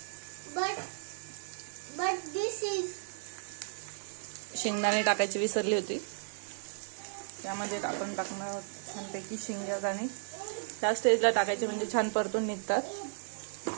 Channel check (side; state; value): left; silent; 55 dB below the other